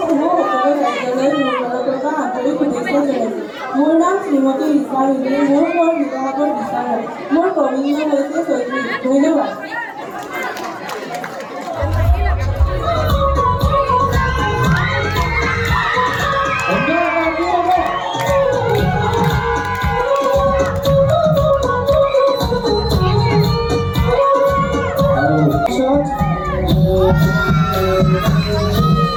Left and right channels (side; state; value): both; identical; correlation 1.00